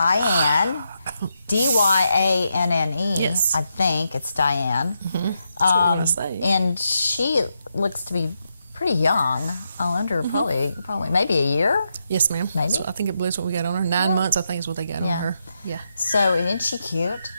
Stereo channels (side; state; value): both; inverted; correlation -0.83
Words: Dyanne. Yes. I think it's Diane. Mm-hmm. That's what we're going to say. And she looks to be pretty young, under probably maybe a year. Yes, ma'am. Maybe. So I think it believes what we got on her. 9 months, I think, is what they got on her. Yeah. So isn't she cute?